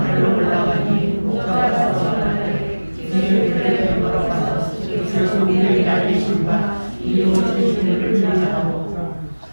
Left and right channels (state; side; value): inverted; both; correlation -1.00